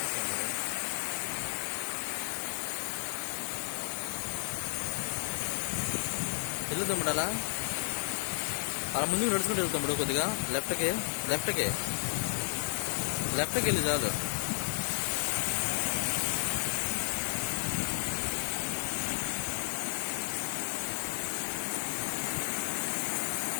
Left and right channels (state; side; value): silent; right; digital silence